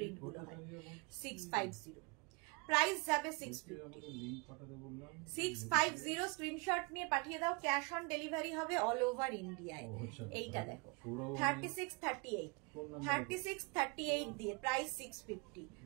গুলো হয়। 650 প্রাইস যাবে 650 স্ক্রিনশট নিয়ে পাঠিয়ে দাও, ক্যাশ অন ডেলিভারি হবে অল ওভার ইন্ডিয়ায়। এইটা দেখো 36, 38 দিয়ে প্রাইস 650,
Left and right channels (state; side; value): quieter; left; 30.3 dB